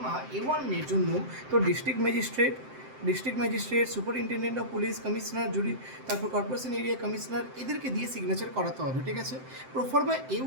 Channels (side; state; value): left; late; 7.7 ms